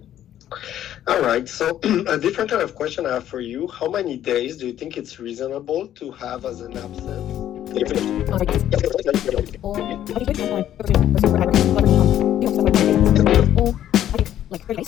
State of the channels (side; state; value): right; quieter; 11.5 dB